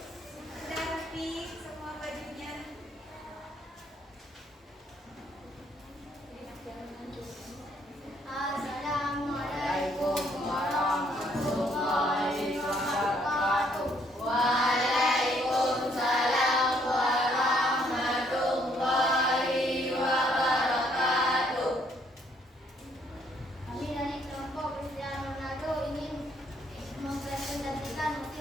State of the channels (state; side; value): normal; both; correlation 0.68